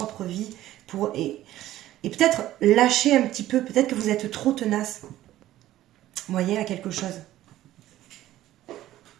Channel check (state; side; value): quieter; left; 14.2 dB